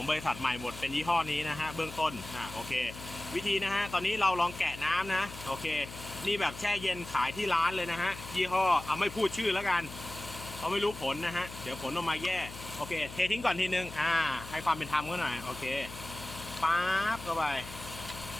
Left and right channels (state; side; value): noise; left; hum, 13 dB below the sound